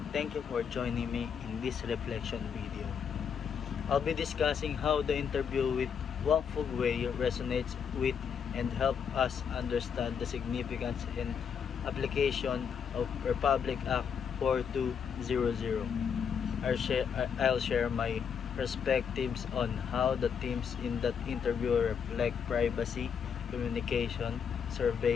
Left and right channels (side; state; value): right; quieter; 7.1 dB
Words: thank you for joining me in this reflection video. I'll be discussing how the interview with Wang Fugwei resonates with and help us understand the significance and application of Republic Act 4200. I'll share my perspectives on how the themes in that interview reflect privacy, communication,